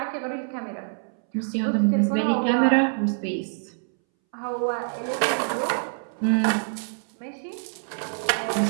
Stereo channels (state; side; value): silent; left; 61 dB below the other